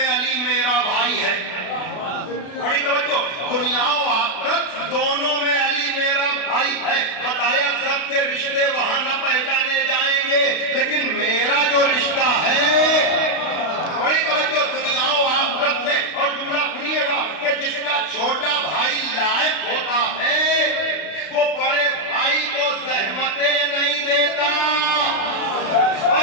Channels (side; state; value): right; late; 32 ms